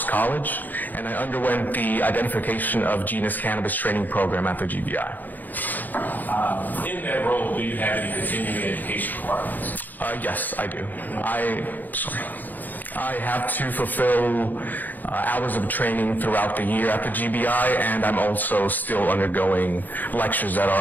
College, and I underwent the Identification of Genus Cannabis training program at the GBI. In that role, do you have any continuing education requirements? Yes, I do. I have to fulfill hours of training throughout the year at the GBI, and I'm also still undergoing lectures that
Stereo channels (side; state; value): right; late; 0.085 ms